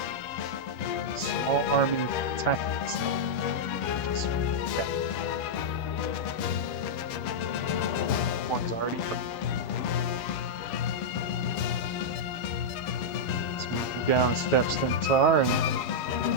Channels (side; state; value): right; late; 9.2 ms